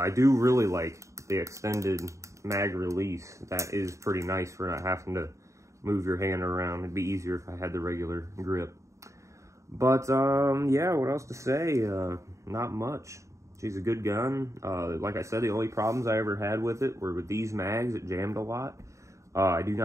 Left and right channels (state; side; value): late; left; 0.15 ms